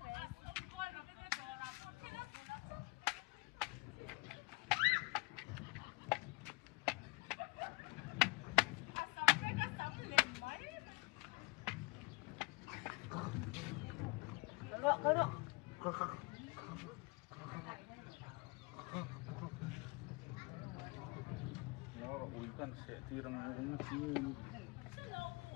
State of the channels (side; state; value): right; quieter; 27.9 dB